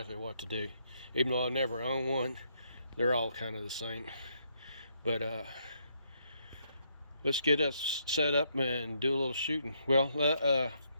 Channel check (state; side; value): inverted; both; correlation -0.74